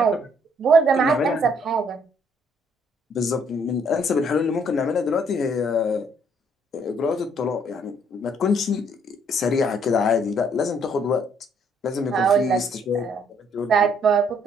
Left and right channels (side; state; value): both; normal; correlation 0.66